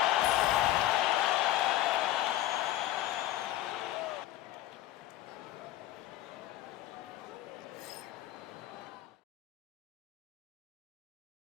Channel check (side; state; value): right; quieter; 14.4 dB